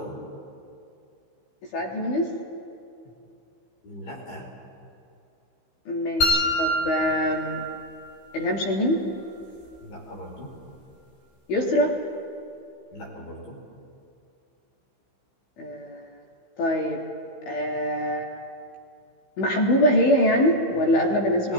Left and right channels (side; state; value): right; late; 16 ms